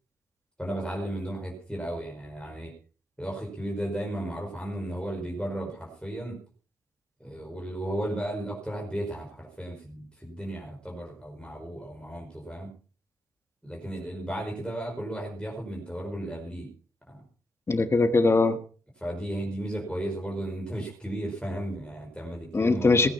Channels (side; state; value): both; normal; correlation 0.80